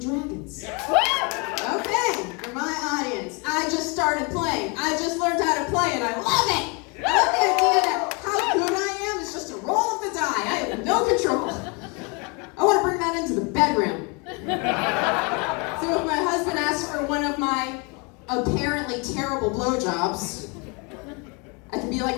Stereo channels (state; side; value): quieter; right; 31.6 dB